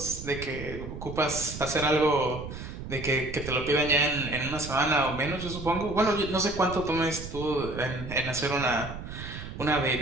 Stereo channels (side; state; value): right; noise; rumble, 10 dB below the sound